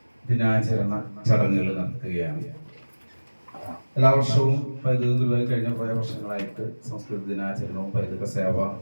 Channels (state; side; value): inverted; both; correlation -1.00